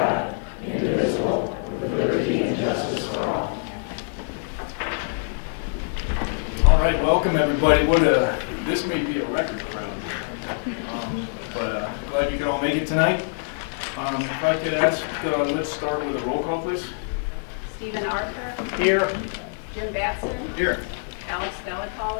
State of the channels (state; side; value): silent; right; 61 dB below the other